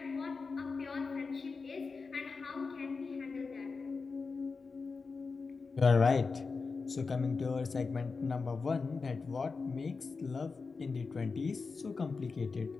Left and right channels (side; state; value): right; quieter; 4.6 dB